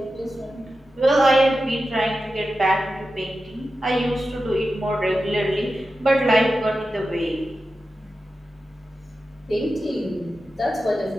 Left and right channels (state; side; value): normal; both; correlation 0.92